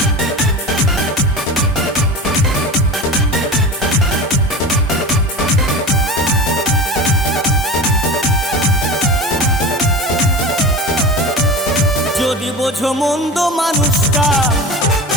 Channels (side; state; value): both; normal; correlation 0.30